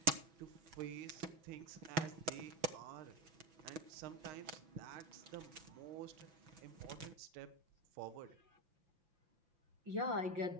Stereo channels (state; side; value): late; left; 6.1 ms